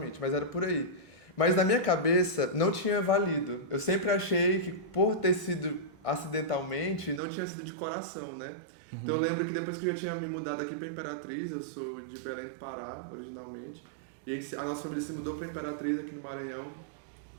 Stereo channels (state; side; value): drops out; left; at 7.2 s